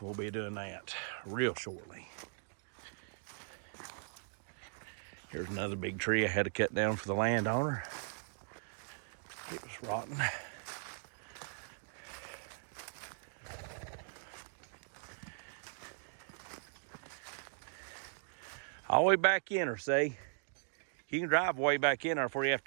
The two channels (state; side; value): silent; left; digital silence